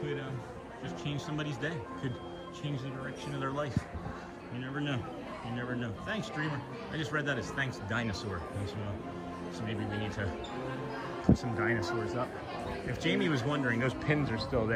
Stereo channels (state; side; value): identical; both; correlation 1.00